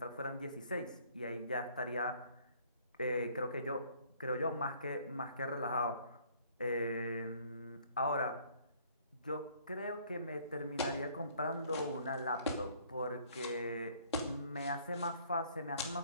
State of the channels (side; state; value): both; inverted; correlation -0.59